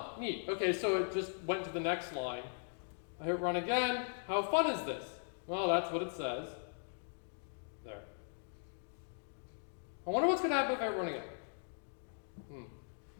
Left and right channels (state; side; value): silent; right; digital silence